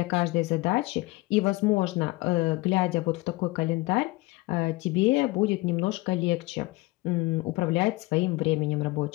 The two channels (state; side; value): quieter; right; 21.9 dB